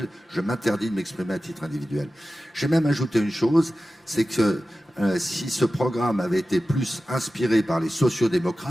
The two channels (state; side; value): normal; both; correlation 0.94